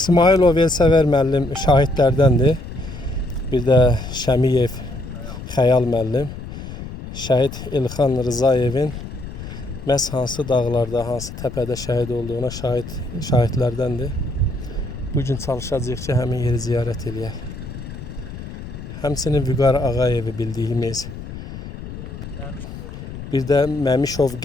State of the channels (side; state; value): left; noise; rumble, 11 dB below the sound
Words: Elsəvər müəllim şahidlərdəndir. Bir də Şəmiyev Xəyal müəllim. Şəhid Elxan Rızayevin məhz hansı dağlarda, hansı təpədə şəhid olduğuna şahidlərdəndir. Bugün çalışacağıq ki, həmin yeri ziyarət eləyək. Həmçinin Vüqar Ağayevi bildiyimiz, bir də Məmişov